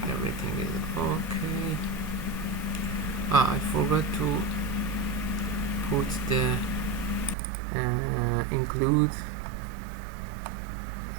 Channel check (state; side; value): drops out; left; at 7.4 s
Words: everything is okay. I forgot to put the include